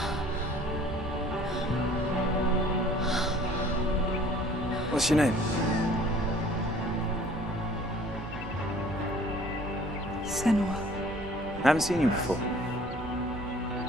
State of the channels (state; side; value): normal; both; correlation 0.52